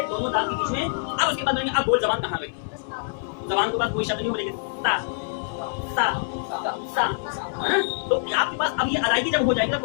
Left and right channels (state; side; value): silent; right; 62 dB below the other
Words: दोनों दांत के बीच में। अब उसके बाद बोलेंगे अब बोल जबान कहाँ गई। जबान के बाद कोई शब्द नहीं बोलेंगे, ता ता ता। तो आपके पास अब ये अदायगी जब हो जाएगी ना,